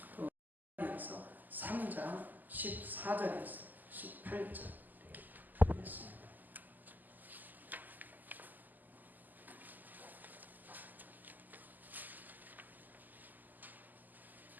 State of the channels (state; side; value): late; left; 0.085 ms